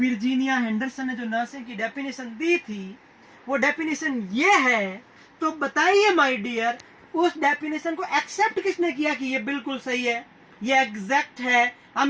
हेंडरसन ने जो नर्सिंग की डेफिनेशन दी थी वो डेफिनेशन ये है तो बताइए माय डियर, उस डेफिनेशन को एक्सेप्ट किसने किया कि ये बिल्कुल सही है, ये एग्जैक्ट है,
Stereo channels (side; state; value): both; identical; correlation 1.00